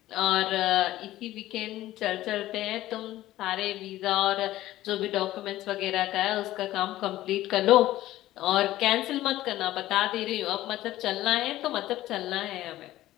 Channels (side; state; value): right; quieter; 15.2 dB